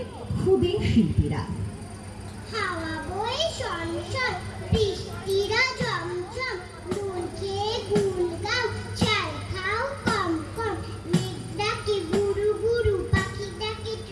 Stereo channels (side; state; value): both; identical; correlation 1.00